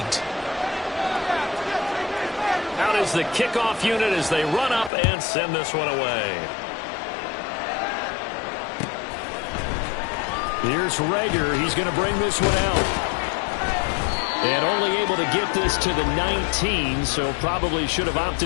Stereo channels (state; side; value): drops out; right; at 4.9 s